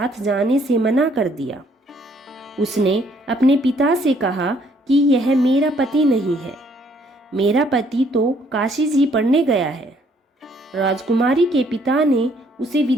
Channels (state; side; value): normal; both; correlation 0.66